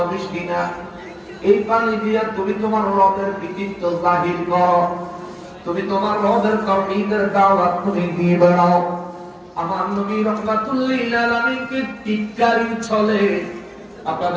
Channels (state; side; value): identical; both; correlation 1.00